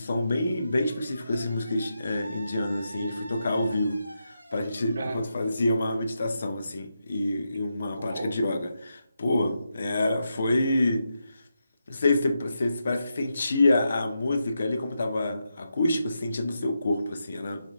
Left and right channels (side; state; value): both; inverted; correlation -0.86